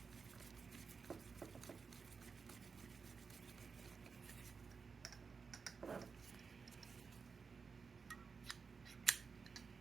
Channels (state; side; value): quieter; left; 5.2 dB